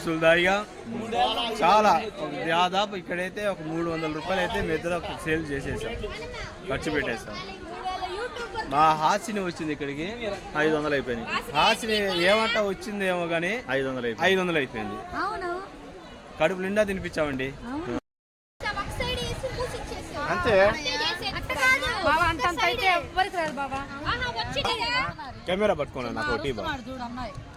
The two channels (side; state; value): both; identical; correlation 1.00